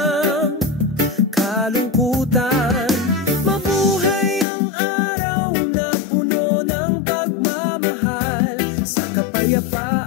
kalungkutan. Mabuhay ang araw na puno ng pagmamahal sa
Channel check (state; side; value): drops out; right; at 4.5 s